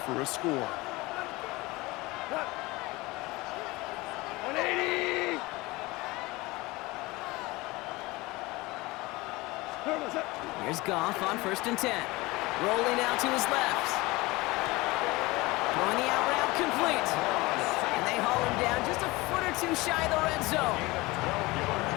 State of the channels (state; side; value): quieter; right; 21.8 dB